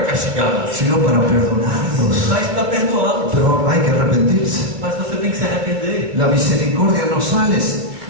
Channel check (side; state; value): left; late; 2.4 ms